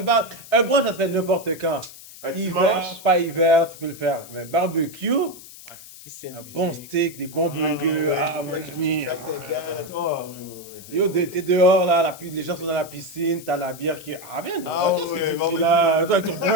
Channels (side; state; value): left; noise; hiss, 17 dB below the sound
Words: Un brunch, ça se fait n'importe quand. Un Hiver, dimanche. pas hiver, tu peux le faire. Mais barbecue, Piscine. un bon steak, des bons burgers. Ah, mon ami. Yo, t'es dehors, là, les gens sont dans la piscine, t'as la bière qui... Ah, viens, Ah qu'est-ce que ouais, tu bon, fais là, toi, ton